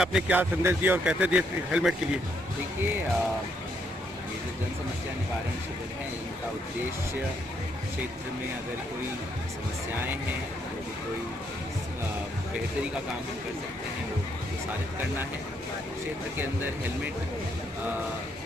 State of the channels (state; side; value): normal; both; correlation 0.74